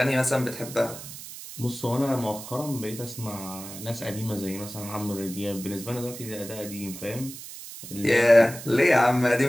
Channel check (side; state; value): right; noise; hiss, 12 dB below the sound